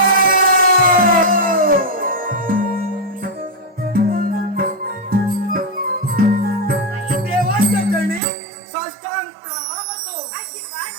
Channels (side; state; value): left; drops out; at 8.2 s